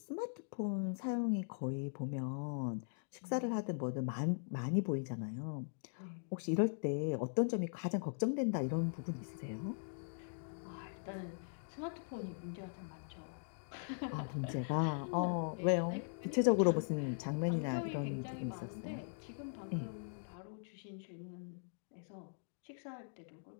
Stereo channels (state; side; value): silent; right; digital silence